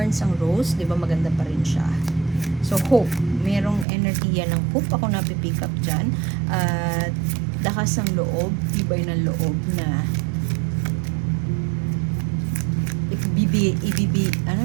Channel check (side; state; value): left; drops out; at 3.9 s